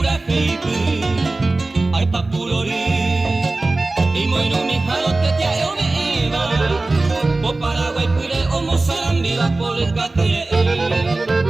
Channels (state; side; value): quieter; left; 3.2 dB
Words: feipe, ay papurori, y moino mi jalote te ayo me iba, po Paraguay pure o Mozambique por el catre,